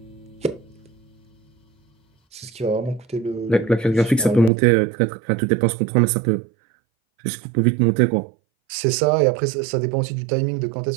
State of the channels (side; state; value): left; drops out; at 4.5 s